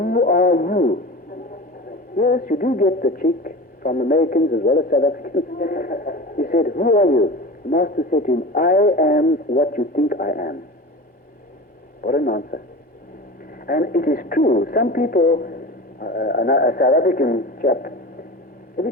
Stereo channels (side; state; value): both; normal; correlation 0.32